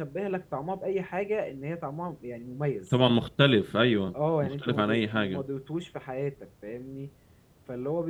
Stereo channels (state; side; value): identical; both; correlation 1.00